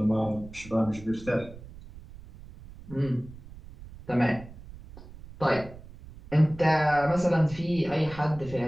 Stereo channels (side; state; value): right; noise; rumble, 17 dB below the sound